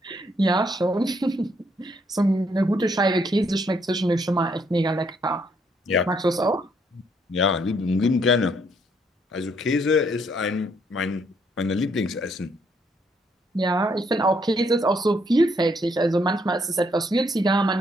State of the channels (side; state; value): both; normal; correlation 0.71